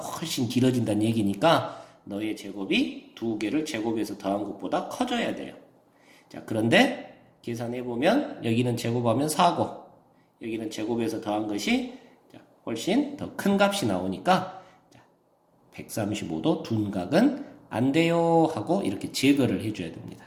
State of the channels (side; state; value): both; identical; correlation 1.00